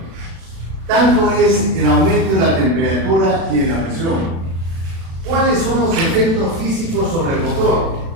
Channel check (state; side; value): late; left; 36 ms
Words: tanto es el aumento de la temperatura y de la presión. ¿Cuáles son los efectos físicos sobre el motor?